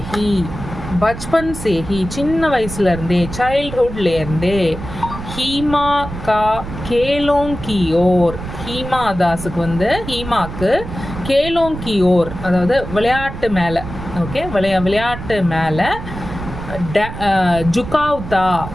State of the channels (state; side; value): noise; right; rumble, 9 dB below the sound